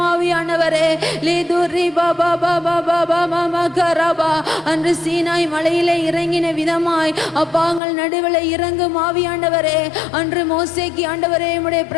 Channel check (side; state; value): right; drops out; at 7.8 s